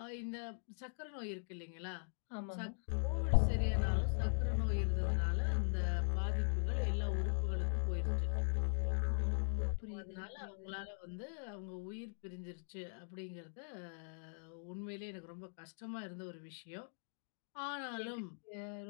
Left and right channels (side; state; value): right; silent; digital silence